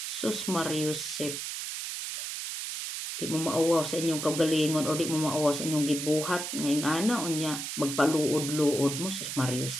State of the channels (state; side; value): noise; right; hiss, 5 dB below the sound